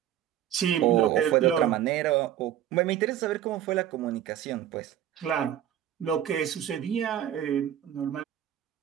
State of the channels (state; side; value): quieter; left; 11.2 dB